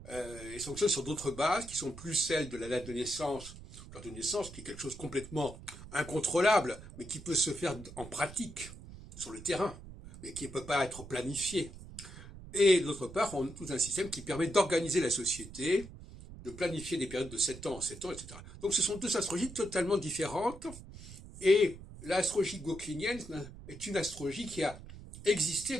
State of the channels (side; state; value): right; noise; rumble, 15 dB below the sound